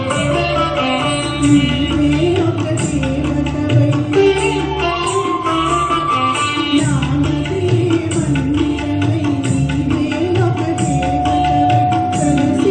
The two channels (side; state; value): both; identical; correlation 1.00